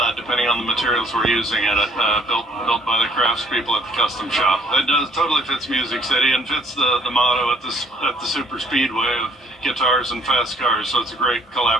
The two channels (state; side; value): normal; both; correlation 0.62